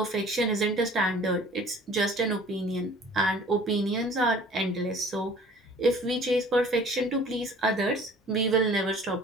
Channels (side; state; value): both; normal; correlation 0.49